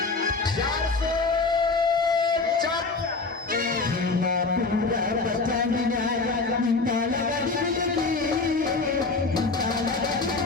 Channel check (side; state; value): right; quieter; 3.9 dB